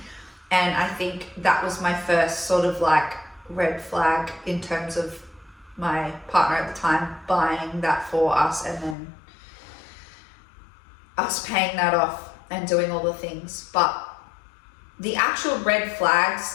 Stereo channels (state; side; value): drops out; right; at 9.0 s